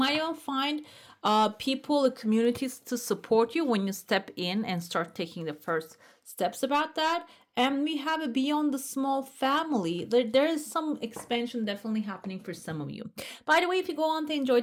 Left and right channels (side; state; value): both; identical; correlation 1.00